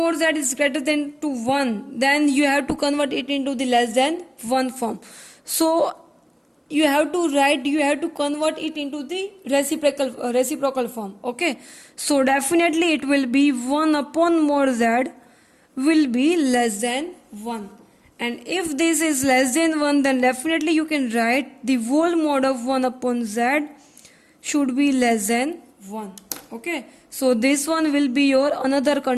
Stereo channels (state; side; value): identical; both; correlation 1.00